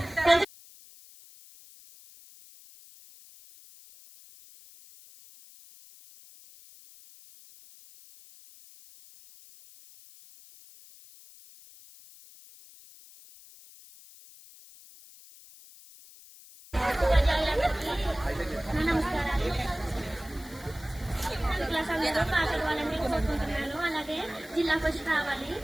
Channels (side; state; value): left; noise; hiss, 21 dB below the sound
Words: నమస్కారాలు. క్లాస్ అందరూ పాస్ అవ్వాలని కోరుకుంటున్నాను. అలాగే జిల్లా ఫస్ట్ రావాలి.